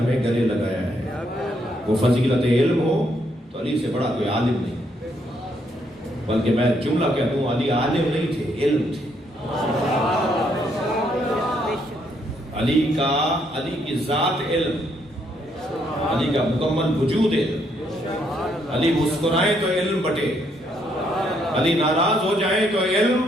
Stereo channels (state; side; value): normal; both; correlation 0.73